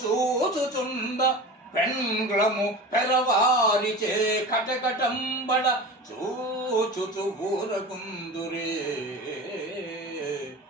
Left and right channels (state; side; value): normal; both; correlation 0.32